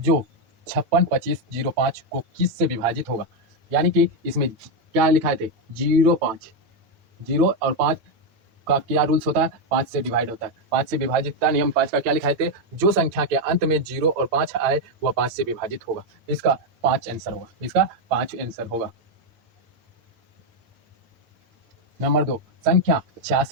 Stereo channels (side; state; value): left; late; 8.9 ms